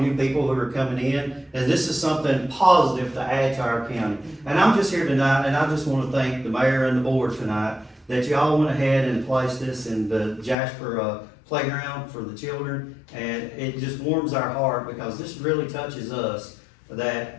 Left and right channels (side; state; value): right; drops out; at 10.6 s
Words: new people who are coming in, and this is something positive to add to our county. And I'm just here tonight, and I just want to thank the mayor and the board tonight that y'all went ahead and placed this in the Jasper playground for the children, and it just warms our heart because this really touches us that